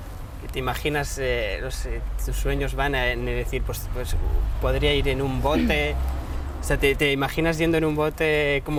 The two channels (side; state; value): both; identical; correlation 1.00